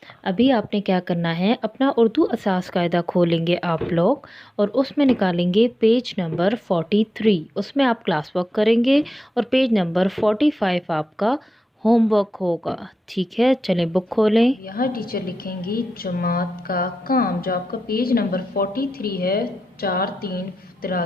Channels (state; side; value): normal; both; correlation 0.91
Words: अभी आपने क्या करना है, अपना उर्दू असास कायदा खोलेंगे आप लोग, और उसमें निकालेंगे पेज नंबर 43। उसमें आप क्लास वर्क करेंगे, और पेज नंबर 45 आपका होमवर्क होगा। ठीक है, चलें बुक खोलें। यहाँ टीचर लिखेंगी जमात का काम, जो आपका पेज नंबर 43 है,